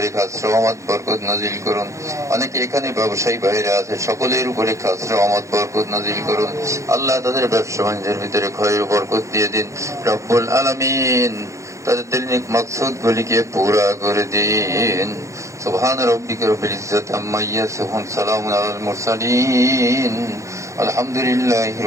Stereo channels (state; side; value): late; left; 0.15 ms